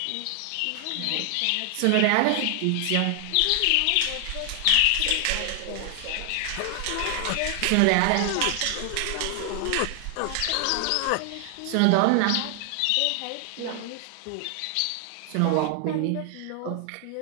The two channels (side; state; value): both; different; correlation 0.00